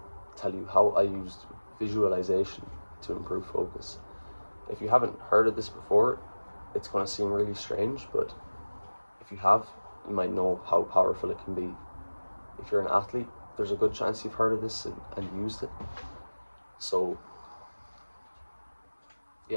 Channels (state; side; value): inverted; both; correlation -1.00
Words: tell you how I used visualization to improve focus. If you haven't heard of this before, it's going to seem really strange, but if you have, you might know how powerful it can be. If you're an athlete, there's a good chance you've heard of this and used it. So